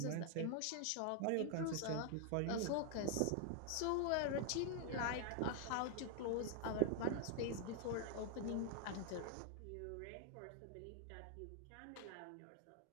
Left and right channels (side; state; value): both; different; correlation 0.00